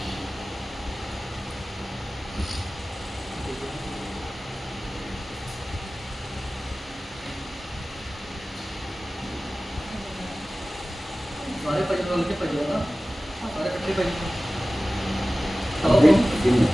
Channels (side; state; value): both; normal; correlation 0.97